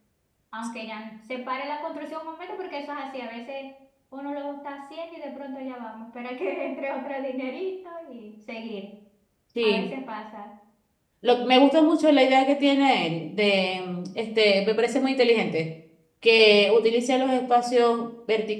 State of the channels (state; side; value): identical; both; correlation 1.00